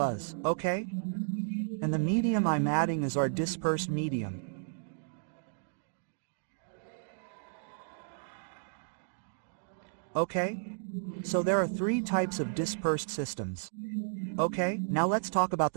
Okay? And the medium I'm adding is our dispersed medium. Okay? So there are three types of dispersed systems. Okay, now let's talk about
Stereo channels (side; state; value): left; silent; digital silence